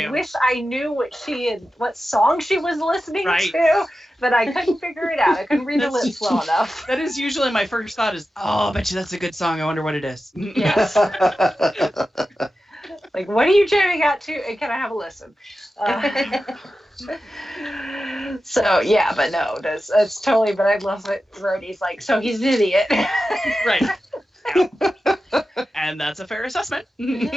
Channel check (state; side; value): normal; both; correlation 0.92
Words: wish I knew what song she was listening to, but I couldn't figure it out. I couldn't read her lips well enough. That is usually my first thought is, oh, I bet you that's a good song. I wonder what it is. Yes. Like, what are you jamming out to? And can I have a listen? So yeah, but no, that's totally. But I love it. Rhodey's like, so he's an idiot. Right. Yeah. And that's a fair assessment.